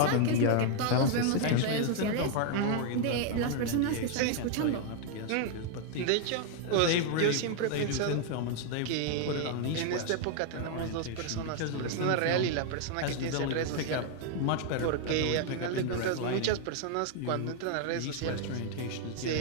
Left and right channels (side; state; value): both; different; correlation 0.00